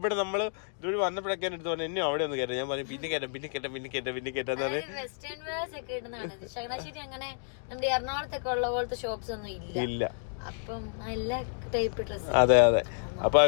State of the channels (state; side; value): silent; right; digital silence